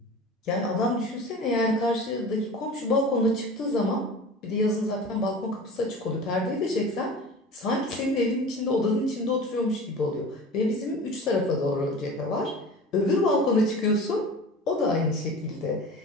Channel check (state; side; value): normal; both; correlation 0.37